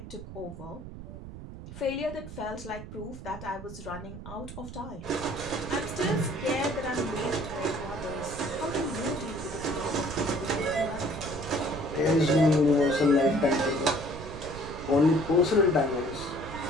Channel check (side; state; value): right; noise; rumble, 12 dB below the sound